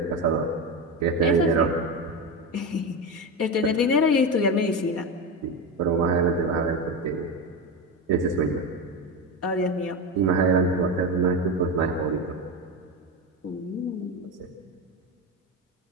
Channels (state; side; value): normal; both; correlation 0.17